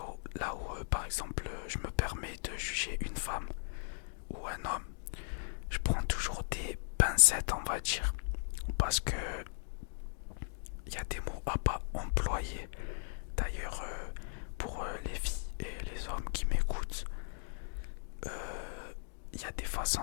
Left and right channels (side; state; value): right; silent; digital silence